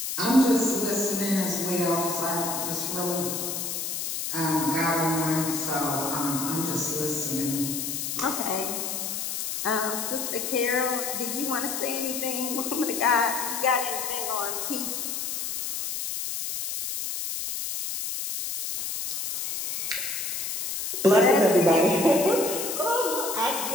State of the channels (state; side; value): noise; left; hiss, 3 dB below the sound